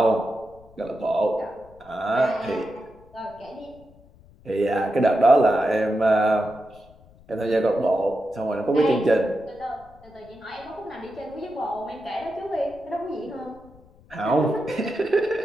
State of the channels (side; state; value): left; noise; rumble, 26 dB below the sound